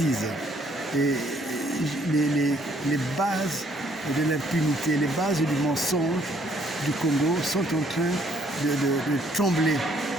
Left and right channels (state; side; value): normal; both; correlation 0.65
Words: Et les bases de l'impunité, les bases du mensonge du Congo sont en train de trembler.